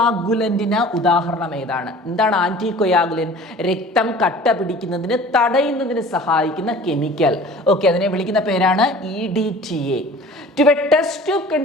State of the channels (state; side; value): normal; both; correlation 0.44